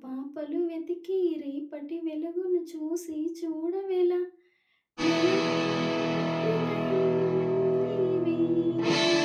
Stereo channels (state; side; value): identical; both; correlation 1.00